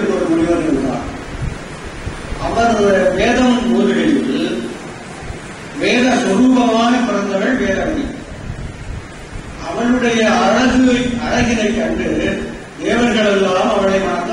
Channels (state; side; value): identical; both; correlation 1.00